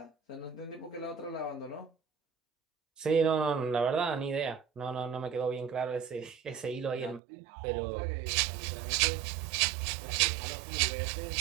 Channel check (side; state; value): left; drops out; at 7.2 s